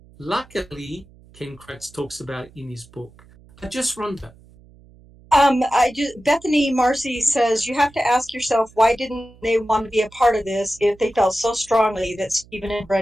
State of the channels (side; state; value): right; noise; hum, 25 dB below the sound